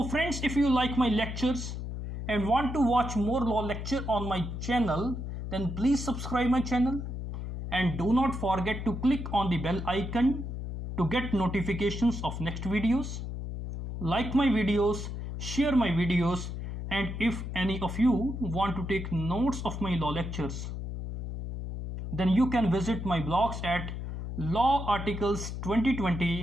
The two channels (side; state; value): left; noise; hum, 6 dB below the sound